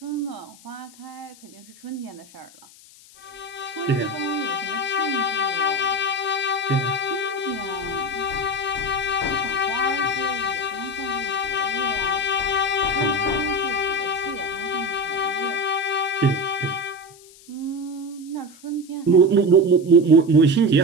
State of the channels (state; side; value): noise; left; hiss, 23 dB below the sound